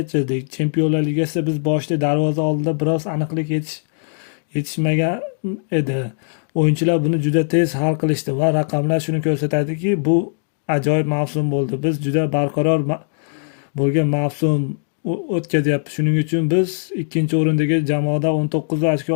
Chempionlar Ligasida biz boshida darvoza oldida biroz aniqlik yetishmagan edi. O'yinchilar buni juda tez hal qilishdi va raqamlar shuni ko'rsatadiki, bu ajoyib mavsum bo'ldi. Biz juda barqaror bo'lgan mavsum o'tkazyapti. Shuning uchun biz ikkinchi o'rindagi jamoada 19 ochko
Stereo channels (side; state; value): right; silent; digital silence